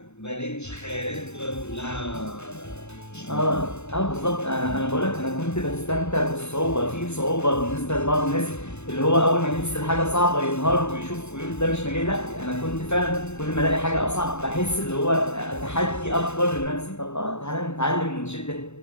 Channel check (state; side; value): late; right; 0.82 ms